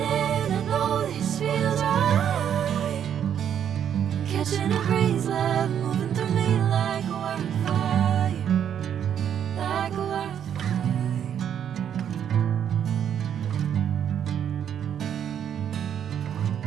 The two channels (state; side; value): quieter; left; 9.1 dB